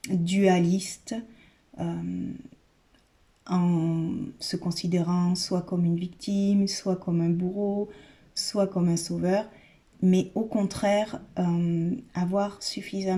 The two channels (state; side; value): identical; both; correlation 1.00